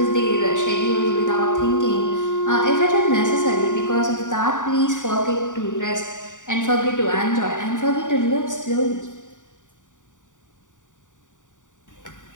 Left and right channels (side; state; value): right; late; 0.86 ms